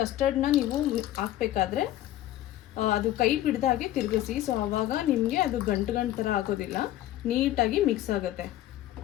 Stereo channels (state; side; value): quieter; right; 13.8 dB